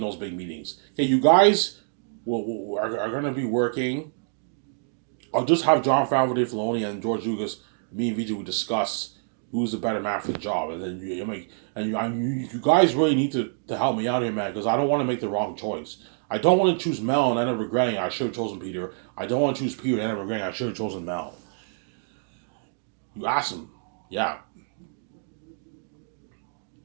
those big meetings. Okay, you guys are going to be working. I'll just have Jon Favreau, Dave Filoni, and George Lucas. Me and BJ will discuss who's the better man for the job, and then you guys really need to help me out here, man, because I don't want to make the wrong choice. I don't want to choose Mel and end up regretting I should have chosen Peter. I don't want to choose Peter and end up regretting I should have chosen Mel. You ask them, yeah.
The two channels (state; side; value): silent; left; digital silence